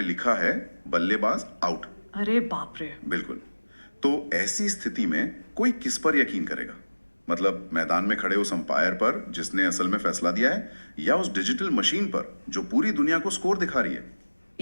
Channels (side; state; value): both; inverted; correlation -1.00